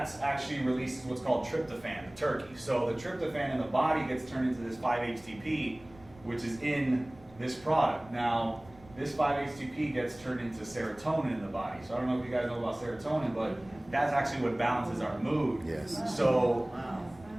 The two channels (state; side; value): noise; right; rumble, 23 dB below the sound